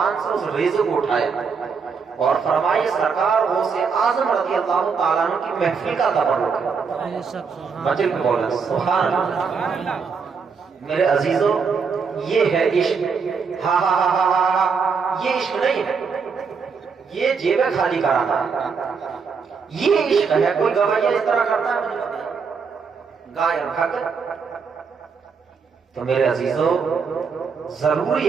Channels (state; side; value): quieter; left; 5.6 dB